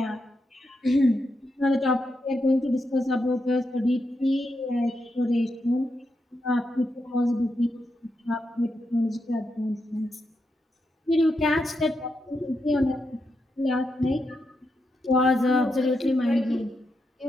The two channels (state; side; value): normal; both; correlation 0.84